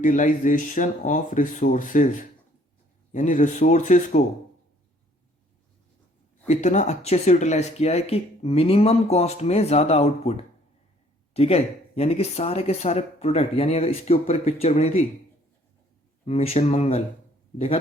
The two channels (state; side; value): normal; both; correlation 0.60